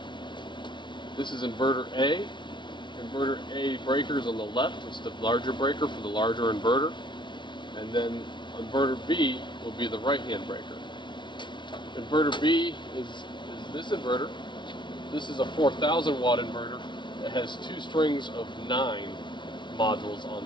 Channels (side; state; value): right; late; 0.23 ms